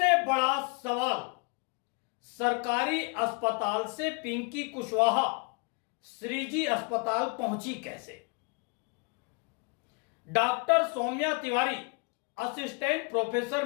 बड़ा सवाल, सरकारी अस्पताल से पिंकी कुशवाहा श्रीजी अस्पताल पहुंची कैसे? Doctor Saumya Tiwari, assistant professor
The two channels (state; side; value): quieter; right; 32.1 dB